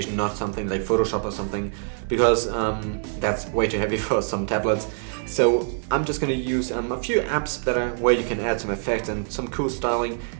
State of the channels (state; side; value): silent; left; digital silence